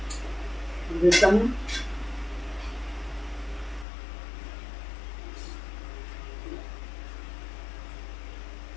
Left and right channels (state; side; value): drops out; right; at 3.9 s